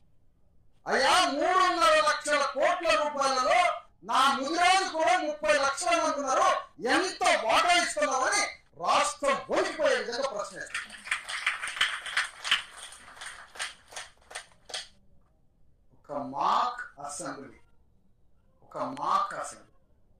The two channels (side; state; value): both; identical; correlation 1.00